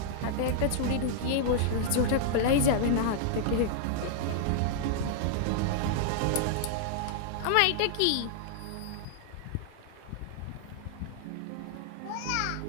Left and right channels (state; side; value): different; both; correlation -0.01